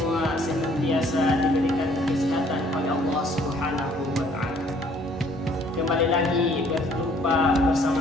senantiasa diberikan kesehatan oleh Allah Subhanahu wa Ta'ala. Kembali lagi berjumpa bersama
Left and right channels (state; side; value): normal; both; correlation 0.60